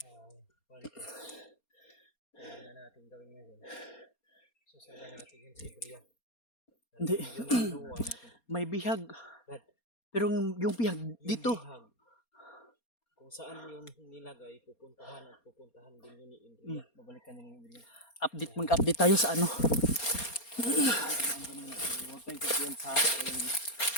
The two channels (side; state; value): right; late; 4.3 ms